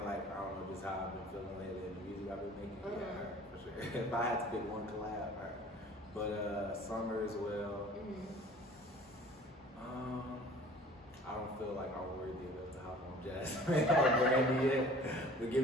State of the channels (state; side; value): normal; both; correlation 0.48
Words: like, I don't know just how I've been feeling lately in the music I've been making. Yeah, her for sure. If I had to pick one collab, her. But Summer as well. I don't feel like I'm worthy enough to hop on Jasmine or Brandy yet. But give